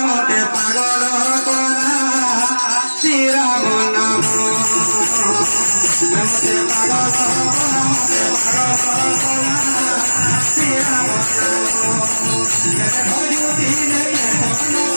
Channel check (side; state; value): both; inverted; correlation -1.00